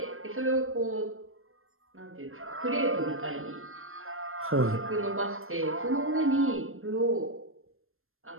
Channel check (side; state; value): left; late; 0.61 ms